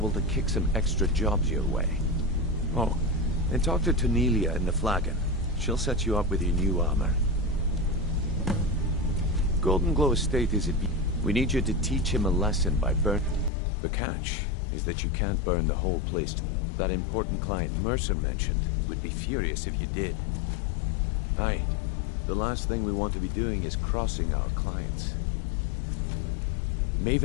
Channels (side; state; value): right; drops out; at 13.5 s